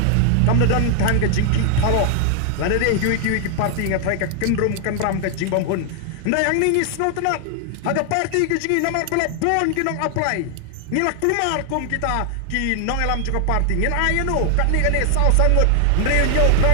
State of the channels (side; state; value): both; different; correlation 0.00